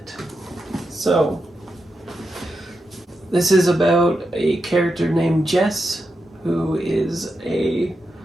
So, this is about a character named Jess, who is a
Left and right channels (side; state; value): both; normal; correlation 0.87